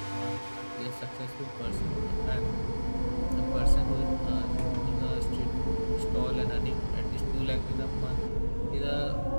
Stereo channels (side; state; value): both; inverted; correlation -1.00